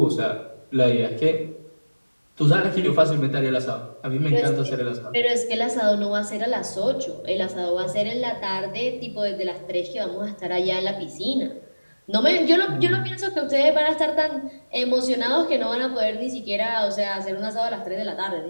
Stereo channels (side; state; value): both; inverted; correlation -1.00